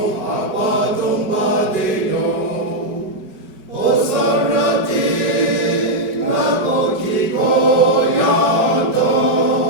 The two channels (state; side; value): late; left; 5.3 ms